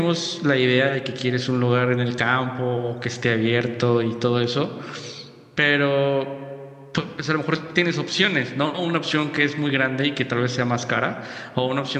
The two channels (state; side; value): identical; both; correlation 1.00